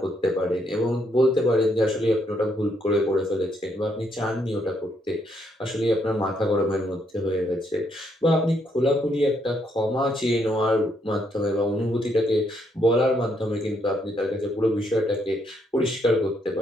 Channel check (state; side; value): normal; both; correlation 0.74